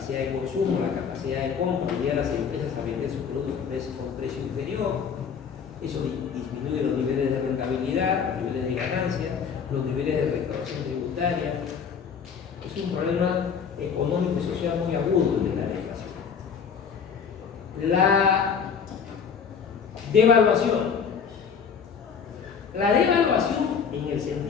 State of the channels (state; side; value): quieter; right; 6.6 dB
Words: de consumo, la capacidad de compra, obliga a las empresas a vender sus productos con precio inferior. Eso disminuye los niveles de rentabilidad, los niveles de ganancia, los niveles de recaudación tributaria. Es un problema económico y social muy agudo de la deflación. La devaluación. La devaluación, en el